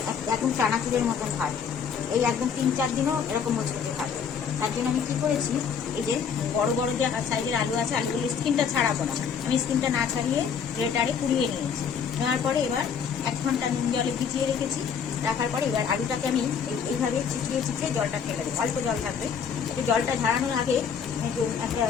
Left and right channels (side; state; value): right; quieter; 6.9 dB